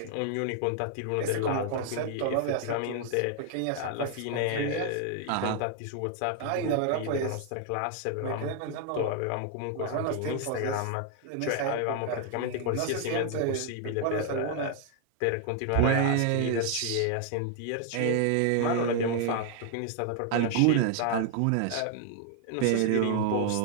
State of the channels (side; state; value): both; different; correlation 0.00